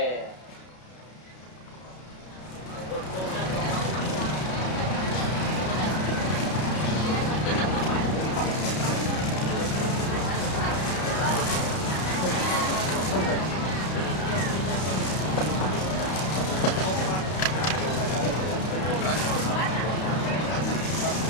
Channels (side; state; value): right; late; 32 ms